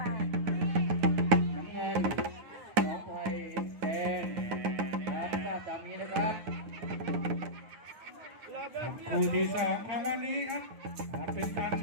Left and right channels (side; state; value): left; late; 9.2 ms